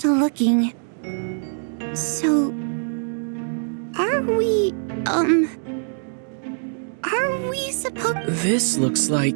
looking. So, are we Are we supposed... This looks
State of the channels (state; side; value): silent; left; digital silence